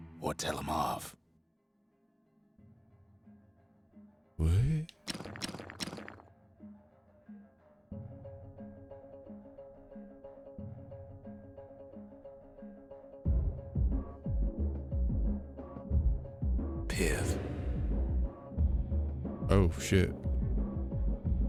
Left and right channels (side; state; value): both; identical; correlation 1.00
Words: Or tell them off? What? Pith. Oh shit.